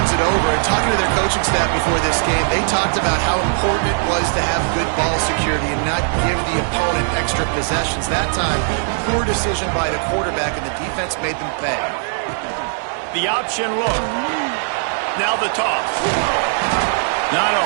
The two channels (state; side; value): silent; left; 59 dB below the other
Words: it over, and talking to their coaching staff before this game, they talked about how important it was to have good ball security and not give the opponent extra possessions. That time, poor decision by the quarterback, and the defense made them pay. The option look. Now the toss. Not a